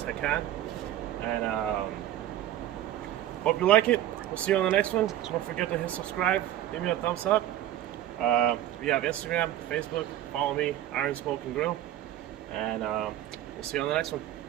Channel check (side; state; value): left; quieter; 12.9 dB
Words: I can. And hope you like it. We'll see you on the next one. Don't forget to hit subscribe, give me a thumbs up. We have Instagram, Facebook. Follow me, Iron Smoke and Grill. And we'll see you on the next one.